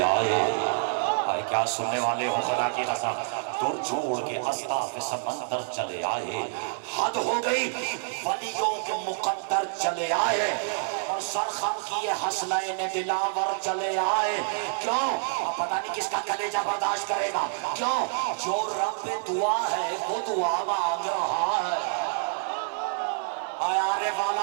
آئے. کیا سننے والے ہو خدا کی قسم, دور چھوڑ کے اصطاف سمندر چلے آئے. حد ہو گئی ولیوں کے مقدر چلے آئے. اور سرخم کیے حسنین دلاور چلے آئے. کیوں؟ اب پتہ نہیں کس کا کلیجہ برداشت کرے گا. کیوں؟ جو رب دعا ہے وہ دعا مانگ رہا ہے. آرے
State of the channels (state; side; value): silent; left; 56 dB below the other